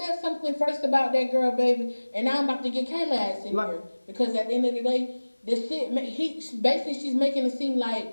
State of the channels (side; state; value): both; inverted; correlation -1.00